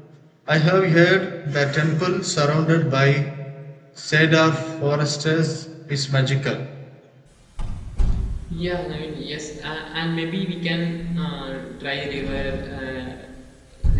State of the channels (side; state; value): both; identical; correlation 1.00